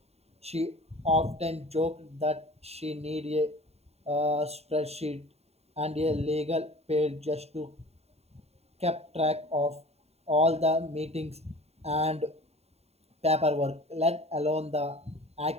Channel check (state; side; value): late; left; 0.30 ms